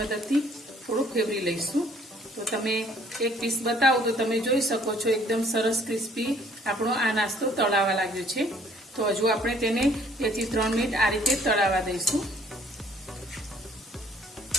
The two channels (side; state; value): both; normal; correlation 0.59